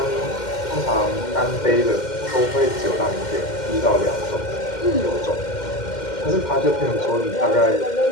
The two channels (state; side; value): late; right; 2.1 ms